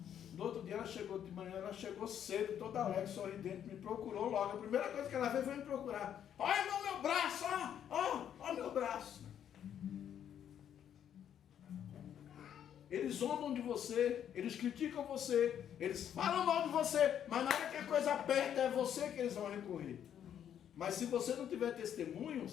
No outro dia ela chegou de manhã, ela chegou cedo, toda alegre, sorridente, me procurou logo. A primeira coisa que ela fez foi me procurar. Olha meu braço, ó meu braço. Eles zombam de você, eles criticam você, eles falam mal de você, mas na hora que a coisa aperta é você que eles vão recorrer. Mas se você não tiver testemunho,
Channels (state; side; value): quieter; right; 9.5 dB